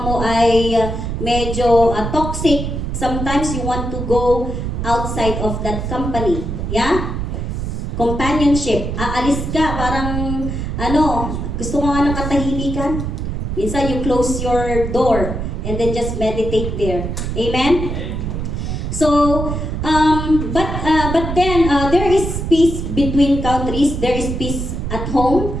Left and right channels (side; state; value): right; noise; rumble, 3 dB below the sound